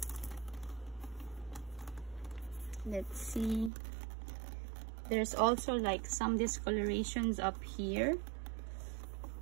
let's see, there's also like some discolorations up here,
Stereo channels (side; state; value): left; drops out; at 3.7 s